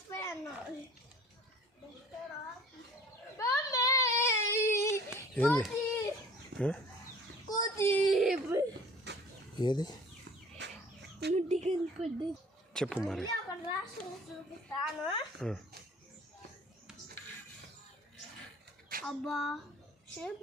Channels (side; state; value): both; normal; correlation 0.48